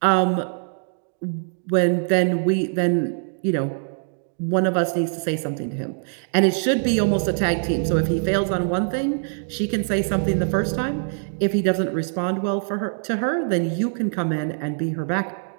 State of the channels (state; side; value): silent; left; digital silence